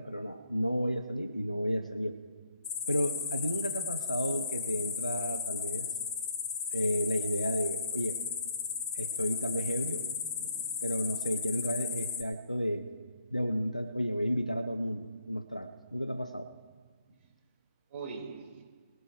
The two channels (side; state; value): both; inverted; correlation -0.70